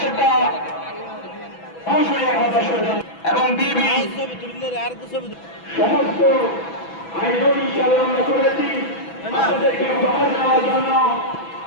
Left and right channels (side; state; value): right; late; 6.0 ms